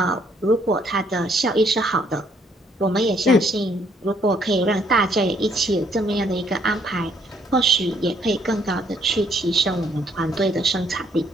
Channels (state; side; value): normal; both; correlation 0.67